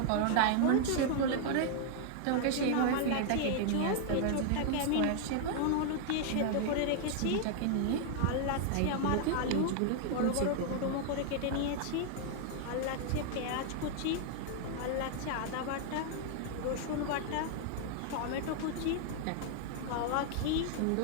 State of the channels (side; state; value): both; different; correlation 0.00